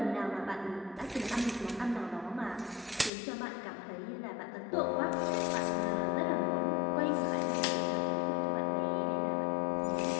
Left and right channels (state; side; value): drops out; right; at 3.1 s